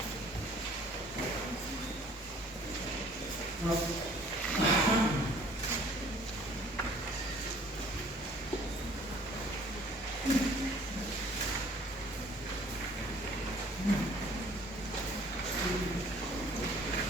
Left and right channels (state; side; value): normal; both; correlation 0.55